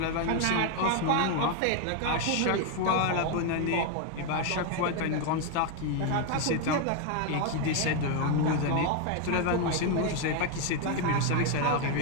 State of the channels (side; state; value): both; different; correlation 0.01